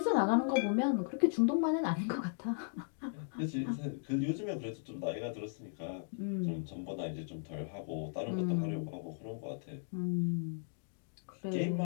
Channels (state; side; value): silent; right; digital silence